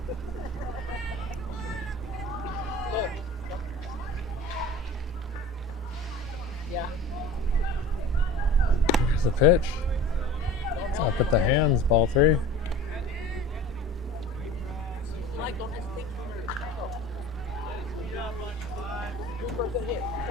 Yeah. There's the pitch. It's up at the hands, ball 3. Like, don't hesitate. Go. Do for a good hit.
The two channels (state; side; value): normal; both; correlation 0.40